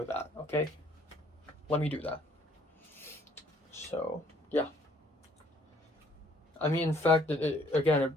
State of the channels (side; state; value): both; normal; correlation 0.62